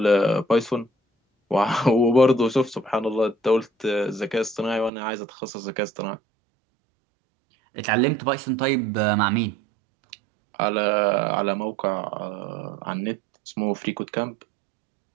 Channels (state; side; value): drops out; left; at 4.9 s